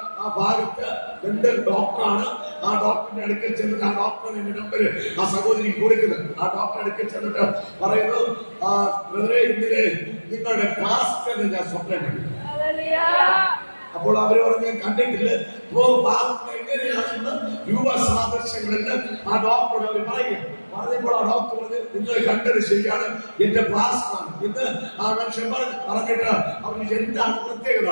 ആ ഭാഗത്ത് ഡെന്റൽ ഡോക്ടറാണ്. ആ ഡോക്ടറിന്റെ അടുക്കൽ ചെന്നിട്ട് ആ ഡോക്ടറിന്റെ നമ്പർ ആ സഹോദരി കൊടുക്കുന്നത്. ആ ഡോക്ടറെ അടുക്കൽ ചെന്നിട്ട് പറയുന്നു, ഇന്നലെ നിങ്ങളുടെ ക്ലാസ് ഞാൻ സ്വപ്നം കണ്ടു. അപ്പോൾ അവര് പറഞ്ഞു, ഞാൻ കണ്ടിട്ടില്ല. എങ്ങനെയാണെന്ന് രൂപസാദൃശ്യങ്ങളിൽ ആ ഡോക്ടറോട് അവർ പറഞ്ഞപ്പോൾ ആ ഡോക്ടർ പറഞ്ഞു, നിങ്ങൾ കണ്ടത് ശരിയാണ്, എന്റെ പ്ലാസ്മാണ് ഇന്ന് ആ മനുഷ്യൻ പറഞ്ഞിട്ട് അവർക്ക് എന്താണ് പ്രത്യേകത.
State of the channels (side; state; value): both; inverted; correlation -1.00